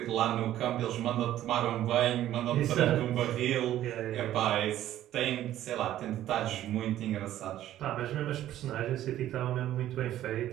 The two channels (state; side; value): quieter; left; 12.9 dB